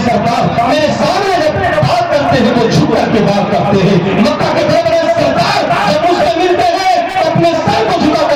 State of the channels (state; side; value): identical; both; correlation 1.00